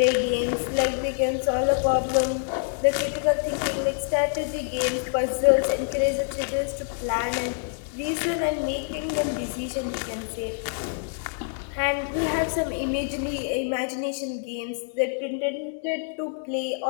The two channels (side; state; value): right; silent; digital silence